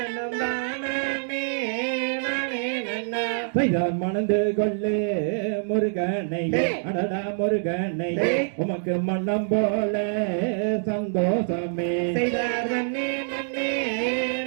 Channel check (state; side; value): silent; left; digital silence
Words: தானே நானே நன்னா செய்தார் மணந்து கொள்ளு முருகனை அடடா முருகனை உமக்கு மன்னம் போல சந்தோஷமே செய்தார் தன்னே நன்னே